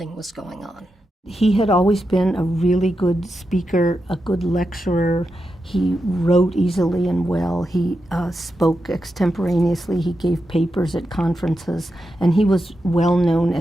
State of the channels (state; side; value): normal; both; correlation 0.88